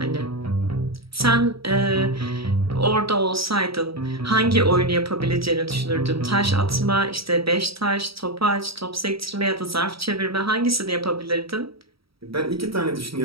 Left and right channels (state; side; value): late; left; 0.76 ms